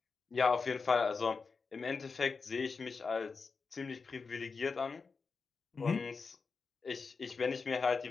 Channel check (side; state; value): right; quieter; 4.8 dB